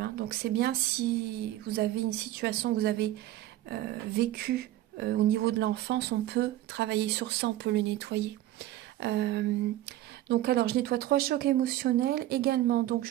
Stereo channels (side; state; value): left; quieter; 14.5 dB